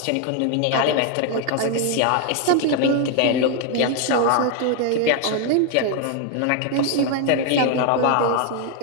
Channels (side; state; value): both; different; correlation 0.00